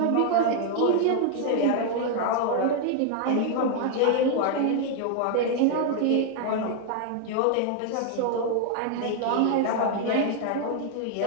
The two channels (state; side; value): different; both; correlation 0.00